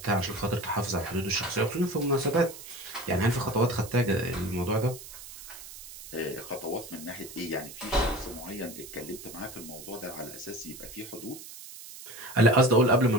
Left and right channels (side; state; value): right; noise; hiss, 14 dB below the sound